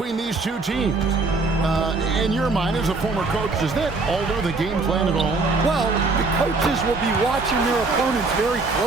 these two teams. In your mind, as a former coach, does that alter the game plan at all? Well, the coaches will be watching their opponents very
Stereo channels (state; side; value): quieter; left; 3.7 dB